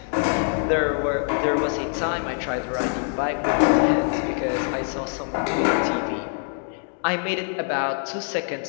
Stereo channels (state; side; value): silent; right; 57 dB below the other